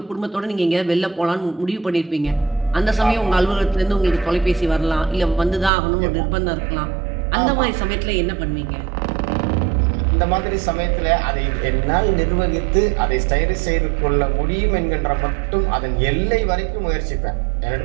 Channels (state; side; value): drops out; left; at 5.7 s